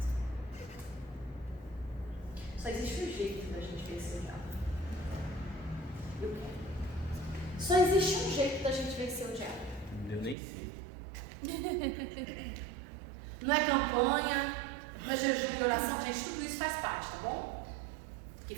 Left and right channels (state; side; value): drops out; left; at 10.4 s